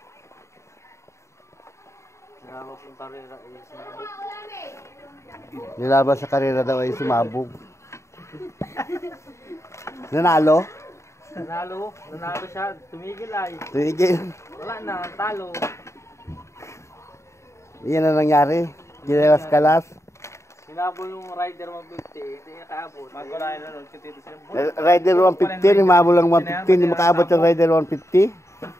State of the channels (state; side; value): late; right; 0.14 ms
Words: Nilaban sa karera daw ay sumabog. Nanalo? Nanalo siya. Tumigil ay. Tumigil. Wala na, talo. Iyan na nangyari. Ginelas-kalas. Sinabol yung Rider 150, hindi nakaabot. Magkulayan na nun, kitito siya. Rider 150, umabol lang 150, hindi makaabot yung Rider 150.